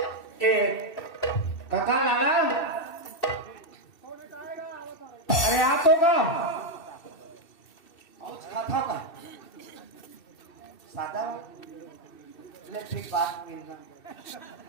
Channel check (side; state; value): right; late; 2.6 ms